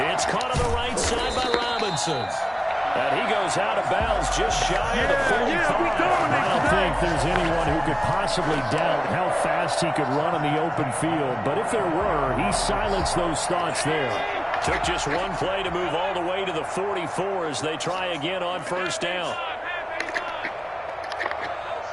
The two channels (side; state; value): both; identical; correlation 1.00